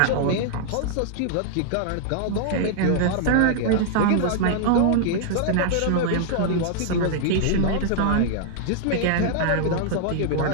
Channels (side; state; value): both; different; correlation -0.01